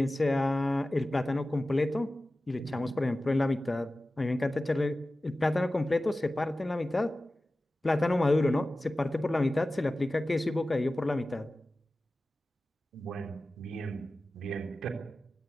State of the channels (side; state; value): both; normal; correlation 0.96